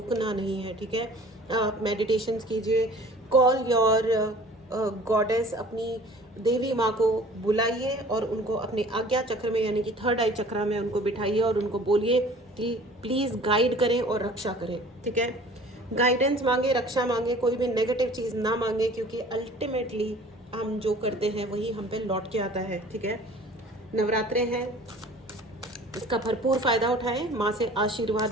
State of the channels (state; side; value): normal; both; correlation 0.48